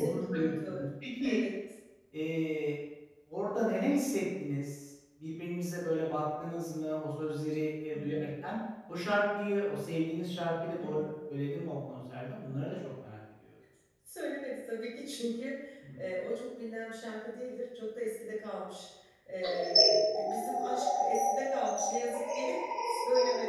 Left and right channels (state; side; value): identical; both; correlation 1.00